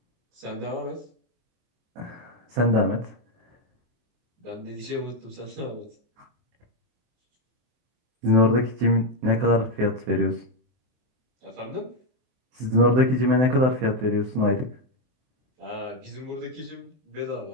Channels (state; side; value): late; left; 23 ms